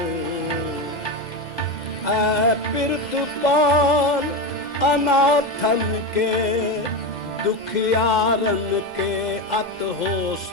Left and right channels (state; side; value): normal; both; correlation 0.16